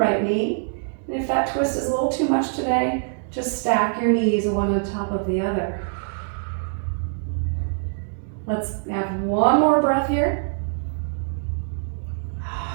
knee. And if that twist is a little too much today, just stack your knees one on top of the other. Let's have one more breath here.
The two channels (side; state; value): left; silent; digital silence